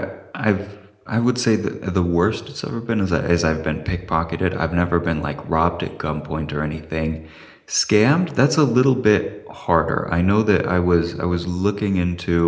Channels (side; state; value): both; identical; correlation 1.00